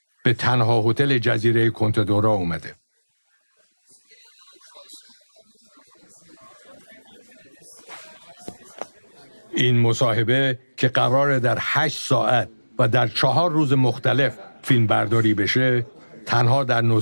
به تنها هتل جزیره کنتدورا اومده. این مصاحبه که قراره در 8 ساعت و در 4 روز مختلف فیلم برداری بشه، تنها در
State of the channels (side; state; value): both; inverted; correlation -1.00